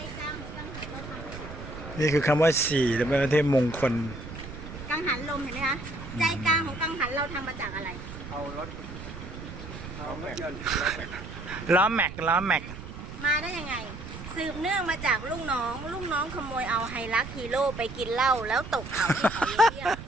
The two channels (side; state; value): right; noise; rumble, 11 dB below the sound